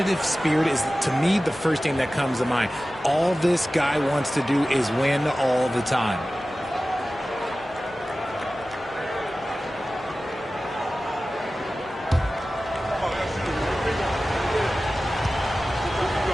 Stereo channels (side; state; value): both; normal; correlation 0.96